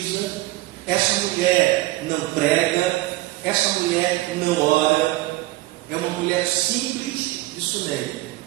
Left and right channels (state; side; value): quieter; left; 18.4 dB